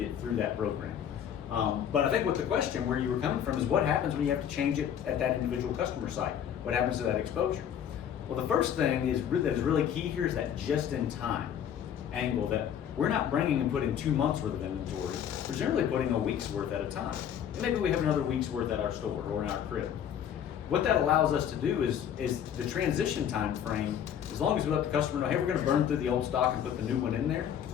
through that program. But I think what the question where you were coming from is what happens when you have to change it at that individual customer site? What happens to that exposure? Well, the first thing that is really key here is that just-in-time angle, that we're not bringing and putting 2 months worth of inventory. We're generally putting a week's worth at a time. And maybe we have another week's worth at our store or in our crib. What that allows us to do is the transition time frame, as long as we let the customer know, hey, we're gonna burn through the old stock and put the new one in there,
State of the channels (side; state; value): right; quieter; 9.2 dB